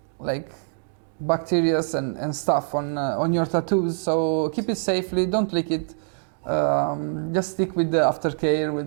like bacteria and stuff on your tattoos. So keep it safely. Don't lick it. Just stick with the aftercare,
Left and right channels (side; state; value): left; silent; digital silence